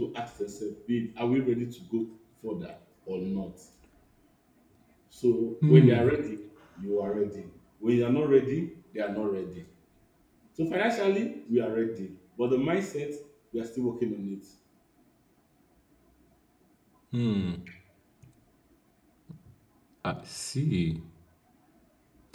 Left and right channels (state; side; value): identical; both; correlation 1.00